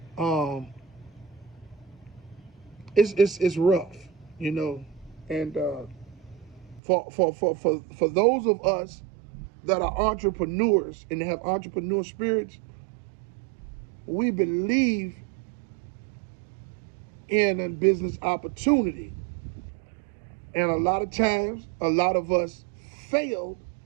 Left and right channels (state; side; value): drops out; left; at 6.8 s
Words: It's rough, you know, and for those of us that are entrepreneurs and have entrepreneur spirits, we believe in a business opportunity. And a lot of times, a lot of us fail